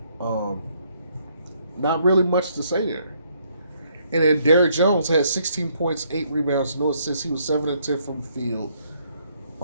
Not really much to say there. And then Derrick Jones had 16 points, 8 rebounds, no assists. He was 7 and 10 from the field.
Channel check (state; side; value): inverted; both; correlation -0.70